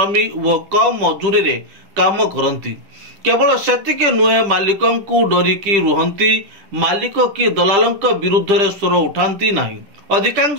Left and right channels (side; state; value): left; late; 10 ms